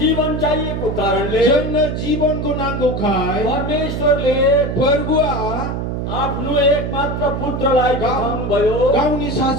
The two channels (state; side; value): noise; right; hum, 3 dB below the sound